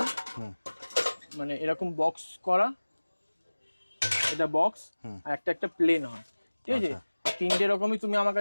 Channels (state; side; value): inverted; both; correlation -1.00